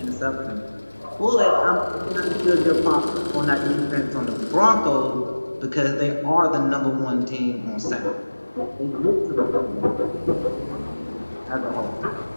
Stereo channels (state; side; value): inverted; both; correlation -1.00